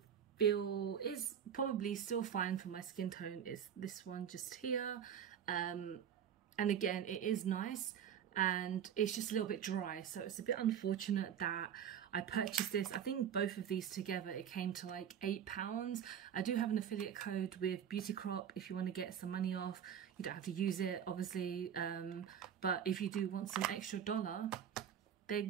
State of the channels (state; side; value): quieter; left; 8.7 dB